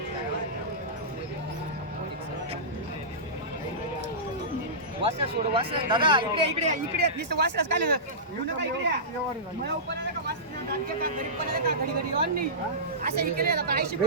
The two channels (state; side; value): normal; both; correlation -0.19